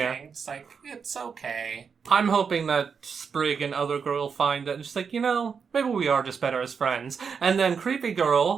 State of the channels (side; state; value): left; quieter; 6.1 dB